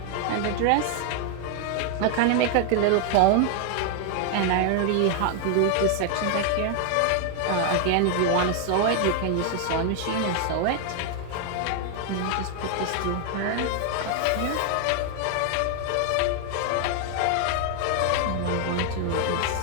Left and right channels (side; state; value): both; different; correlation 0.00